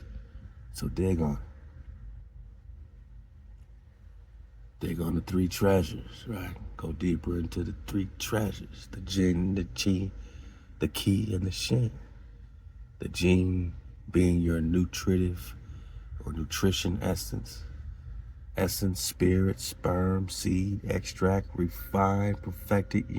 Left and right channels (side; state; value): both; identical; correlation 1.00